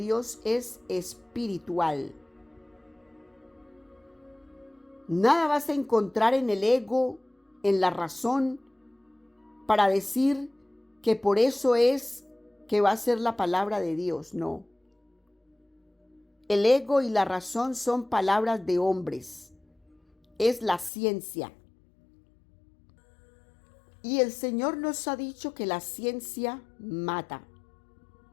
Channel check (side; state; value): right; drops out; at 20.9 s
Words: es espiritual. Nada vas a encontrar en el ego, en la razón, para decir que por eso es que va a ser la palabra de Dios. No. El ego y la razón son palabras de hombres. Es la ciencia. Y el Señor nos ha dicho que la ciencia mata.